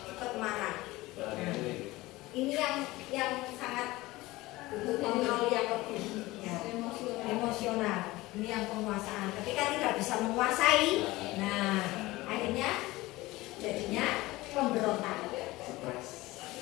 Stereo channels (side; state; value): right; quieter; 19.5 dB